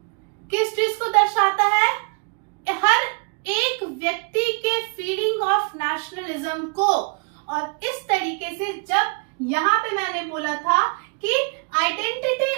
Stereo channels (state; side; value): quieter; left; 36.9 dB